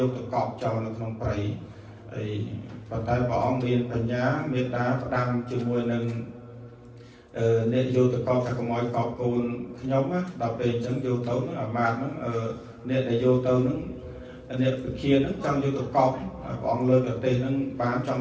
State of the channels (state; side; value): identical; both; correlation 1.00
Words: từ cọp trò nó không phải ấy và tay bỏ miền phần nhá miền đá đăng chừng mùi nâng nên vô từ con phải có mọi cọp cồn nhóm á đọc về chẳng vô tấu nó ở màn nó nên là vô tấu nó nên kia nó trong vô từ cọp bọn lơ được tiền nó bán